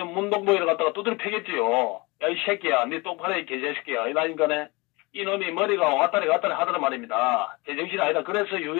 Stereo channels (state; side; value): quieter; right; 25.5 dB